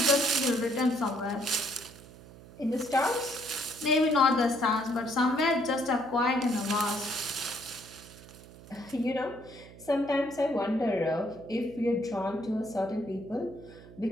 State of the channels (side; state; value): right; noise; hum, 19 dB below the sound